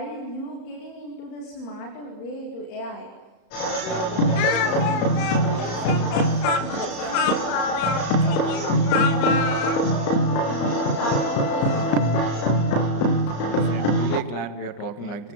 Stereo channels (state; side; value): late; right; 34 ms